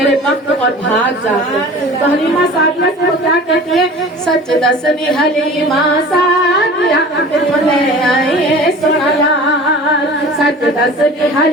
وقت اور بھاگ جاتے تو حلیمہ سعدیہ سے وہ کیا کہتی ہے سچ دسنی حلیمہ سعدیہ لے آئیے سونا لال سچ دسنی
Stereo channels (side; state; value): both; normal; correlation 0.41